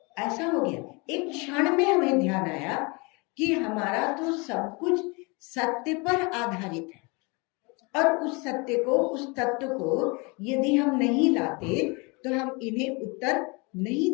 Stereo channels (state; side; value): quieter; right; 28.8 dB